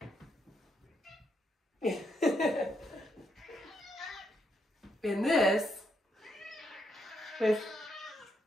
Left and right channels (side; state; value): both; normal; correlation 0.78